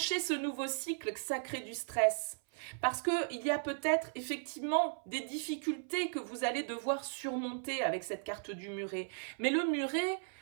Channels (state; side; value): silent; left; 54 dB below the other